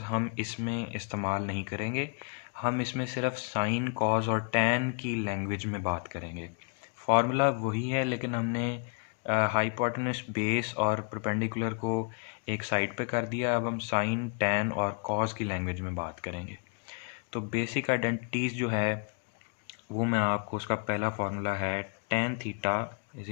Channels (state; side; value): quieter; right; 37.4 dB